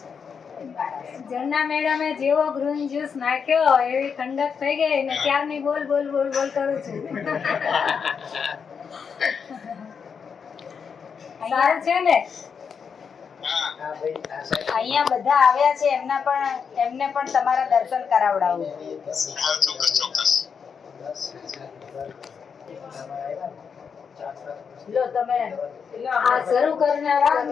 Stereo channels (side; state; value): right; quieter; 6.4 dB